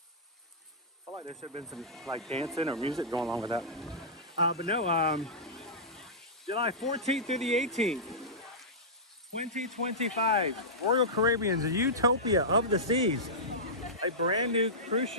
feel like there should have been some like dancing or music going on with that. But no, July 14th through the 18th, 2025, Royal Caribbean's Utopia of the Seas, a brand new cruise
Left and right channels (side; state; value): both; normal; correlation -0.14